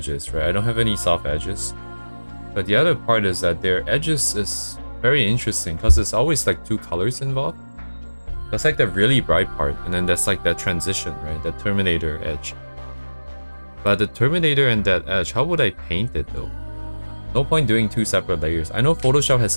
right? I don't have any soft edges. But the other part is that their edges is very interesting because there's always like two colors involved. That's like the really bright part, and then that's like that transition, right? The Terminator edge. But the Terminator and that edge, how would I paint it though? No point doing two separate layers. I know Photoshop has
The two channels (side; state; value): both; inverted; correlation -1.00